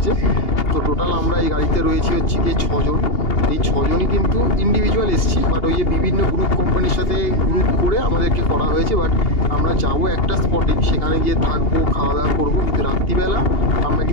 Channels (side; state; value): right; late; 2.8 ms